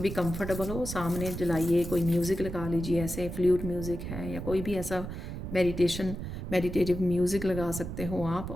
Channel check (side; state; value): right; noise; rumble, 7 dB below the sound